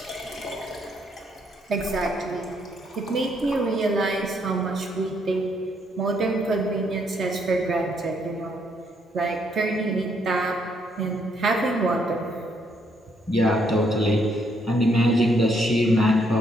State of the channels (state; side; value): normal; both; correlation 0.72